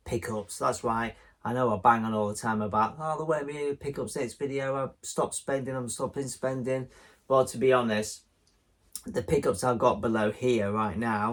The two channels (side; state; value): both; identical; correlation 1.00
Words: pickups. That's right, I know I bang on all the time about, oh, there won't be pickups next video, I've stopped spending, I'm stopping spending. Well, to be honest, the pickups I've got below here right